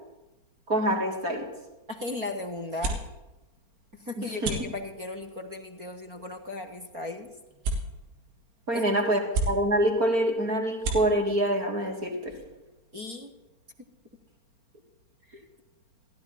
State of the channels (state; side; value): late; left; 4.4 ms